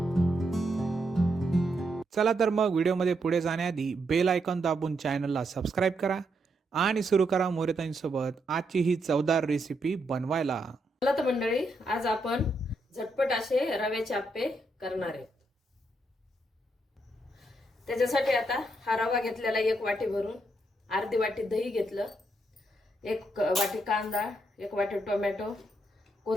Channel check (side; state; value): both; normal; correlation 0.79